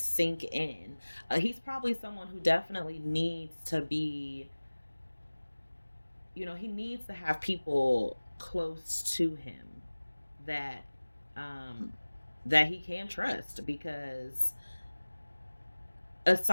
in. He's probably someone who definitely needs to be, he needs to have people close to him that um that he can trust, because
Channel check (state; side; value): inverted; both; correlation -1.00